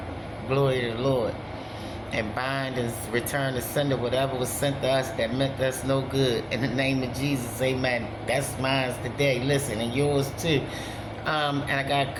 glory of the Lord, and bind and return to sender whatever was sent to us that meant us no good. In the name of Jesus, amen. That's mine today. Listen, and yours too. And I got a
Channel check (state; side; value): identical; both; correlation 1.00